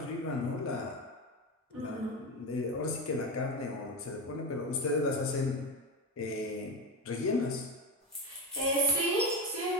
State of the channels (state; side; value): normal; both; correlation 0.18